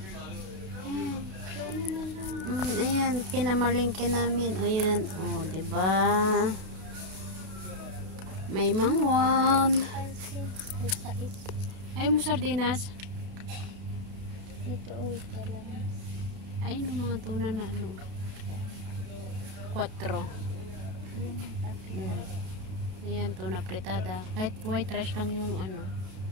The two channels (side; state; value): left; late; 31 ms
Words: Tuna na lang. Ayan, pinamalingke namin. Ayan, oh, diba? May mangwan. Pansin. Ay, sais. Ayaw mo sardinas? Ito, uwi ka lang. Ayun ang mga tuna na ano. 4. Yung akin. Ayan, tuna fritada. Kahit white rice lang yung ano.